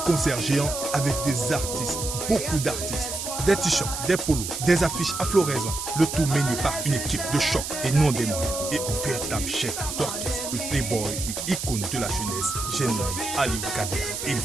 géants avec des artistes, beaucoup d'artistes. Des t-shirts, des polos, des affiches à floraison, le tout mené par une équipe de choc et non des moindres. Et un véritable chef d'orchestre, le playboy et icône de la jeunesse, j'ai nommé Ali Kader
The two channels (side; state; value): right; noise; hiss, 5 dB below the sound